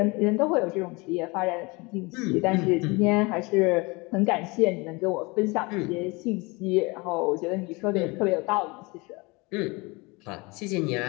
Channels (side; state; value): right; quieter; 26.1 dB